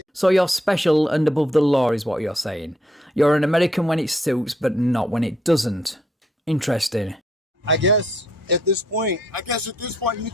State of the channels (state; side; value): normal; both; correlation 0.71